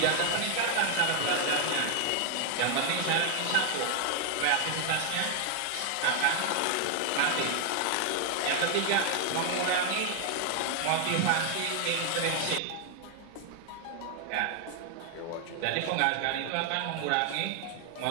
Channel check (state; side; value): different; both; correlation 0.00